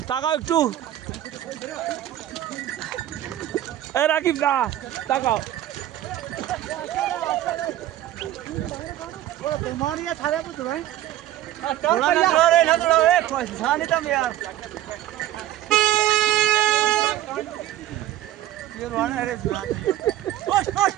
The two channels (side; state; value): left; quieter; 13.4 dB